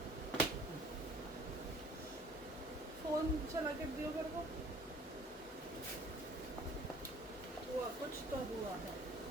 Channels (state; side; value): normal; both; correlation 0.52